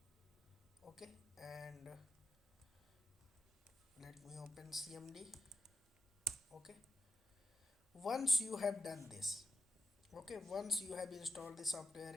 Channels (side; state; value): both; normal; correlation 0.88